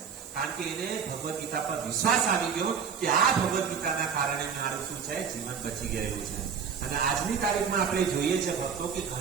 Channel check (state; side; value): quieter; left; 6.7 dB